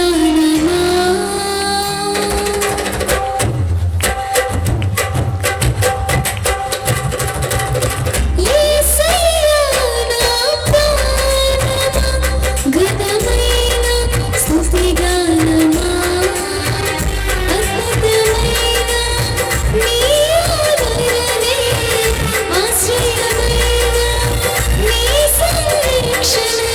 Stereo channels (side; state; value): both; identical; correlation 1.00